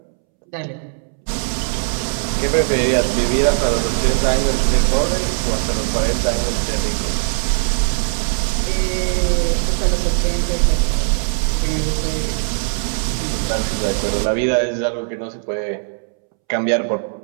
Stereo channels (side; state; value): left; silent; 66 dB below the other